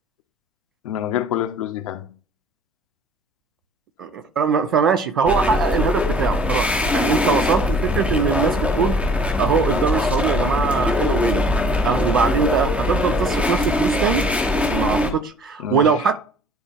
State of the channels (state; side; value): normal; both; correlation 0.53